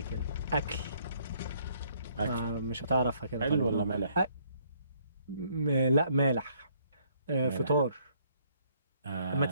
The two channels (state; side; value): inverted; both; correlation -0.66